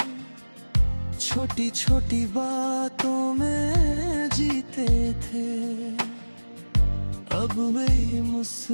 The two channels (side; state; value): both; inverted; correlation -1.00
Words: छोटी छोटी बातों में जीते थे। अब वही